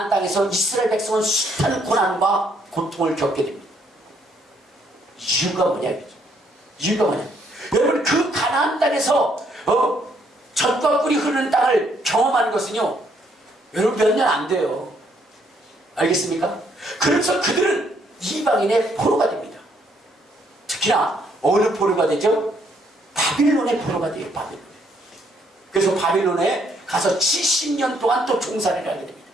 땅에서 이스라엘 백성은 숱한 고난과 고통을 겪게 됩니다. 이유가 뭐냐 이거죠. 이유가 뭐냐. 여러분 그 가나안 땅에서 젖과 꿀이 흐르는 땅을 경험하는 것은요 여러분 몇 년 안 돼요. 알겠습니까? 그래서 그들은 이방인의 포로가 됩니다. 특히나 어느 포로가 되죠? 바빌론의 포로가 돼요. 바빌론. 그래서 바빌론에 가서 70년 동안 또 종살이를 하게 됩니다.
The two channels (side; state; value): both; normal; correlation 0.69